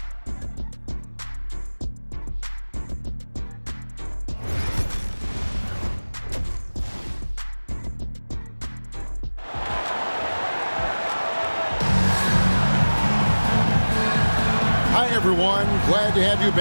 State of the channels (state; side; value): inverted; both; correlation -1.00